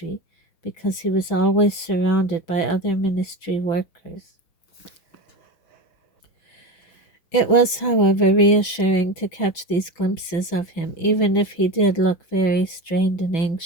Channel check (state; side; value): late; right; 6.0 ms